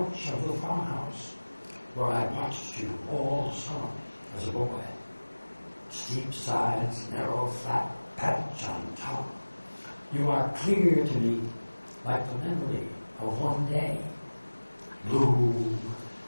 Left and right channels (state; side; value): inverted; both; correlation -1.00